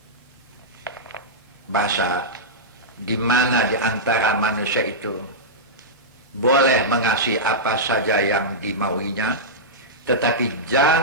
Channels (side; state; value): both; normal; correlation -0.12